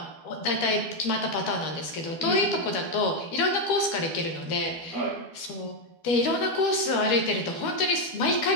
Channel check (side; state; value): right; late; 12 ms